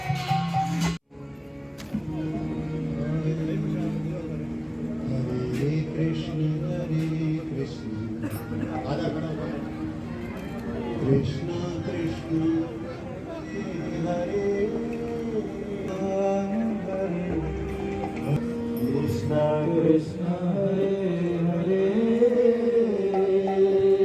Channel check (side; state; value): both; identical; correlation 1.00